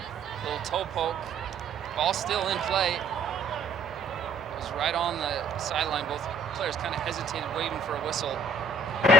Little toe poke, ball still in play. It was right on the sideline. Both players kind of hesitated, waiting for a whistle.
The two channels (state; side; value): normal; both; correlation 0.60